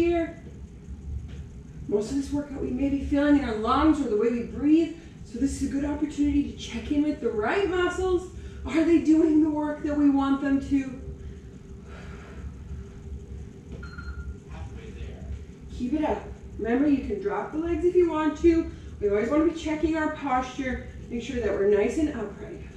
Most of this workout we may be feeling in our lungs or the way we breathe. So this is a good opportunity to check in with the right muscles. Are they doing the work that we want them to? Keep it up. Remember, you can drop the legs if you want to. We always want to be checking our posture. Make sure that we're nice and upright.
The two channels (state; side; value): identical; both; correlation 1.00